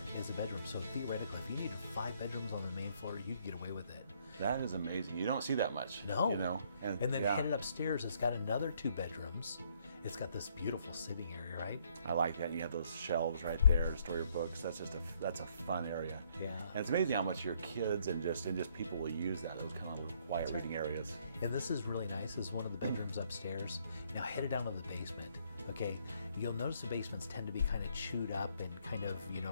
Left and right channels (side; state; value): both; inverted; correlation -0.68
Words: as a bedroom. So theoretically, if you needed 5 bedrooms on the main floor, you could get away with it. That is amazing. You don't see that much. No. You know? And then headed upstairs, it's got another 2 bedrooms. It's got this beautiful sitting area, right? I like that. You have those shelves right there to store your books. That's a fun area. Yeah. And it's amazing how much your kids and just people will use that, those kind of quiet reading areas. And this is really nice. This is one of the bedrooms upstairs. Now headed down to the basement. Okay, you'll notice the basements tend to be kind of chewed up and kind of,